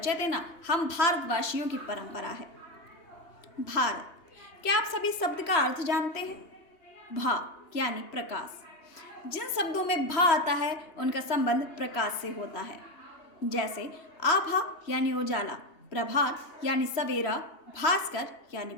देना हम भारतवासियों की परंपरा है। भारत, क्या आप सभी शब्द का अर्थ जानते हैं? भा यानी प्रकाश। जिन शब्दों में भा आता है उनका संबंध प्रकाश से होता है। जैसे आभा यानी उजाला, प्रभात यानी सवेरा, भास्कर यानी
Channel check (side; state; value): right; late; 3.0 ms